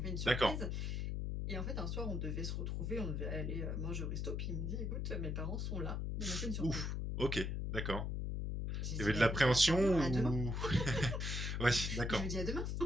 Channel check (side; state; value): left; noise; hum, 1 dB below the sound